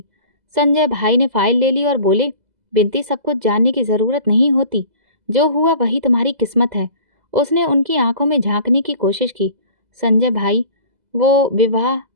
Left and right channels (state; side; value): late; left; 2.0 ms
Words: संजय भाई ने फाइल ले ली और बोले, बिंती, सब कुछ जानने की जरूरत नहीं होती। जो हुआ वही तुम्हारी किस्मत है। उसने उनकी आंखों में झांकने की कोशिश की। संजय भाई, वो विवाह